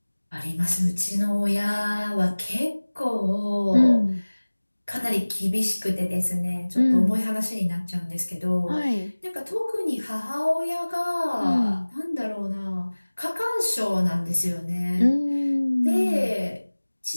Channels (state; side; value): inverted; both; correlation -1.00